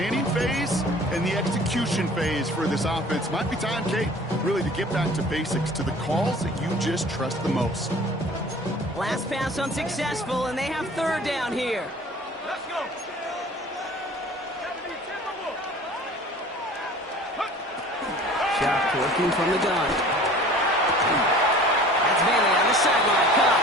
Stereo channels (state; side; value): normal; both; correlation 0.46